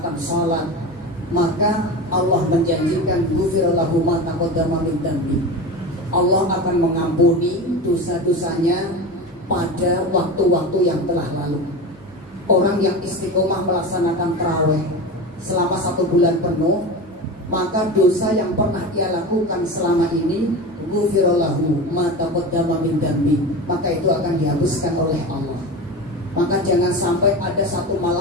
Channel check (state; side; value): normal; both; correlation 0.26